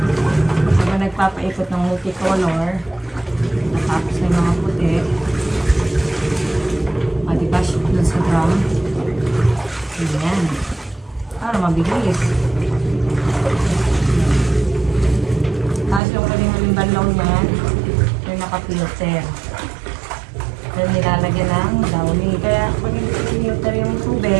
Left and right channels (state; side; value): drops out; left; at 16.0 s